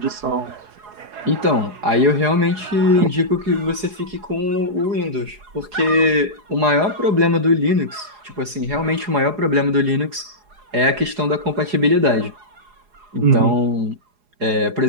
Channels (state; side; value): late; left; 4.8 ms